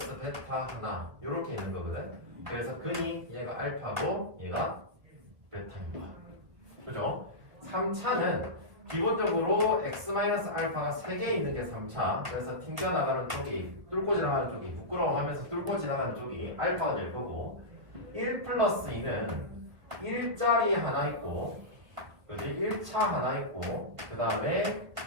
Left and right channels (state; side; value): late; left; 1.7 ms